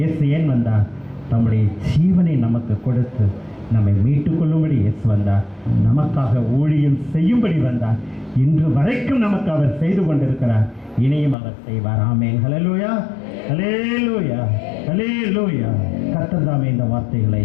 ஏன் வந்தார்? தம்முடைய ஜீவனை நமக்கு கொடுத்து நம்மை மீட்டுக் கொள்ளும்படி இயேசு வந்தார். நமக்காக ஊழியம் செய்யும்படி வந்தார். இன்று வரைக்கும் நமக்கு அவர் செய்து கொண்டிருக்கிறார். இனியும் அவர் செய்வார். ஆமென், ஹல்லேலூயா, ஹல்லேலூயா, ஹல்லேலூயா. கர்த்தர் தாமே இந்த வார்த்தைகளை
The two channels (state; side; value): drops out; right; at 11.4 s